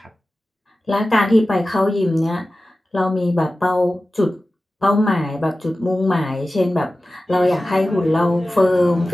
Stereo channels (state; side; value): normal; both; correlation 0.95